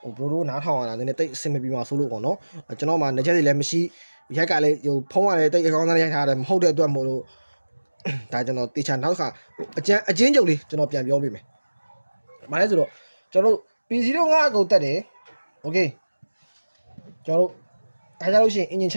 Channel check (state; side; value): inverted; both; correlation -1.00